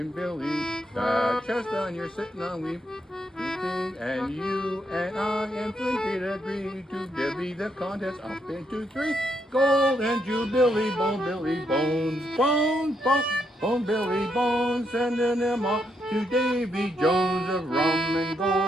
Billy. That chestnut you're sitting on, we've and you and I and Flint did agree to divvy the contest up into three. Gold and Jubilee, Bone Billy Bones, Bones, Bones, Bone Billy Bones, sending them off to Davy Jones of rum and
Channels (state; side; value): normal; both; correlation 0.78